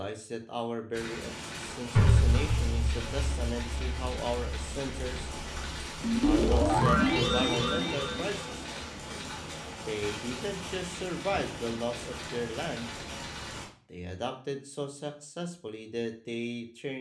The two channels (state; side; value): identical; both; correlation 1.00